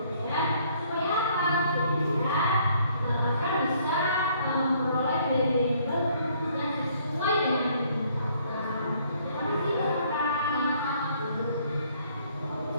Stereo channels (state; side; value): inverted; both; correlation -0.64